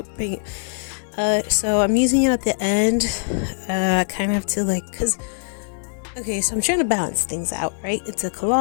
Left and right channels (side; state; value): right; silent; digital silence